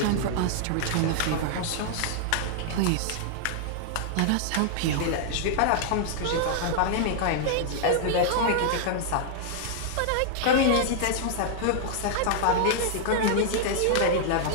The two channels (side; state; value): both; different; correlation -0.01